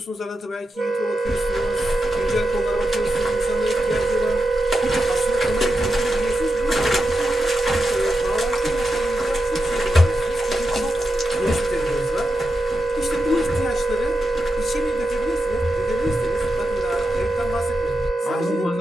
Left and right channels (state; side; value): normal; both; correlation 0.88